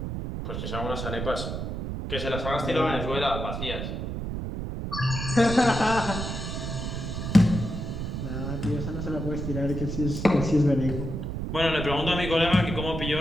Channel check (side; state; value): right; noise; rumble, 4 dB below the sound